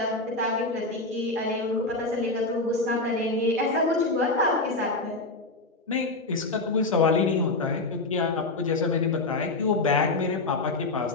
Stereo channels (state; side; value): quieter; right; 3.1 dB